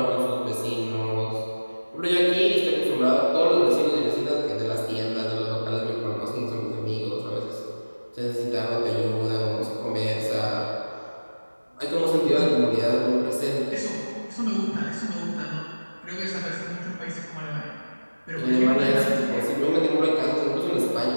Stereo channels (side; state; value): both; inverted; correlation -1.00